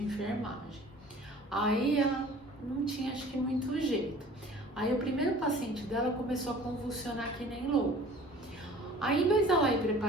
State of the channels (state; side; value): normal; both; correlation 0.47